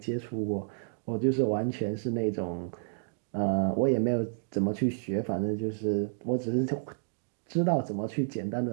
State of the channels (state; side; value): silent; left; digital silence